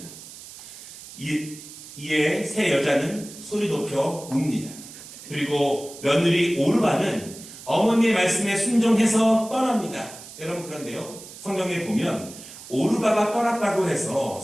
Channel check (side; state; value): right; noise; hiss, 16 dB below the sound